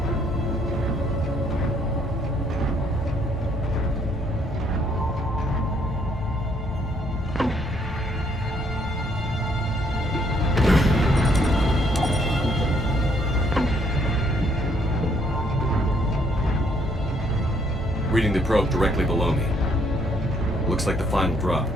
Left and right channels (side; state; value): both; normal; correlation 0.68